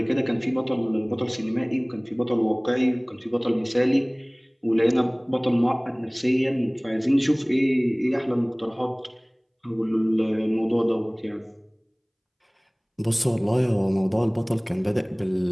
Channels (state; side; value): identical; both; correlation 1.00